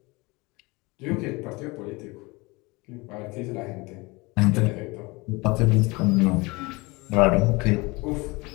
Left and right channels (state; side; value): quieter; right; 24.7 dB